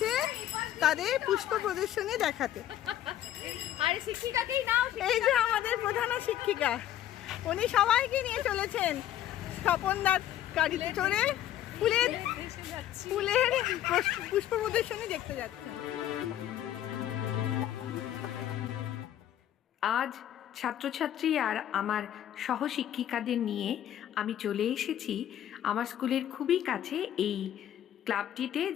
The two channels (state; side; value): quieter; right; 11.8 dB